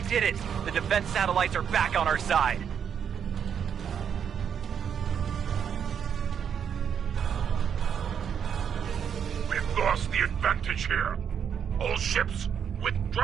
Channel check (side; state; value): left; quieter; 7.9 dB